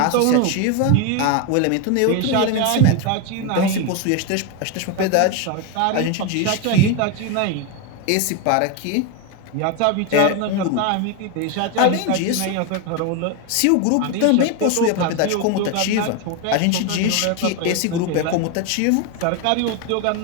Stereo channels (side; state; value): both; different; correlation 0.02